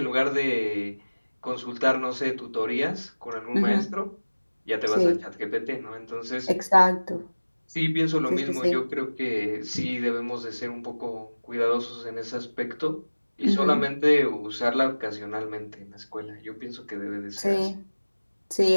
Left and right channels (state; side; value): inverted; both; correlation -1.00